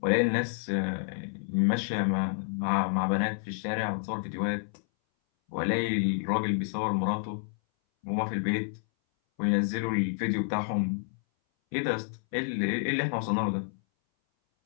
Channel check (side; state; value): right; silent; 58 dB below the other